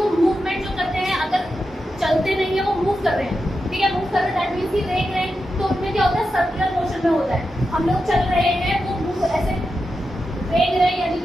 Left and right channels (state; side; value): normal; both; correlation 0.89